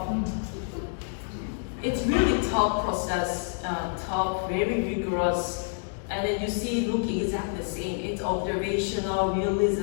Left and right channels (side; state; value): right; silent; digital silence